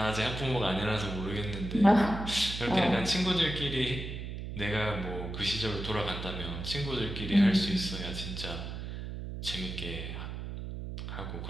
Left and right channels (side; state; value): right; noise; hum, 7 dB below the sound